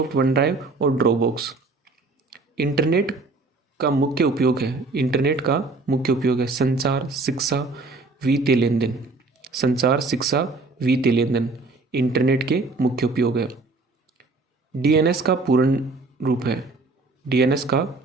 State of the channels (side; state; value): left; quieter; 3.6 dB